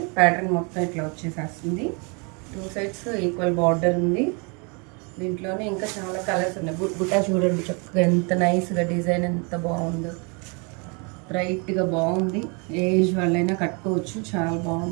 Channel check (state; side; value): quieter; left; 33.0 dB